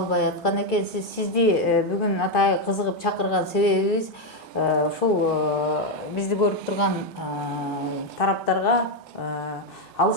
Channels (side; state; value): both; normal; correlation 0.04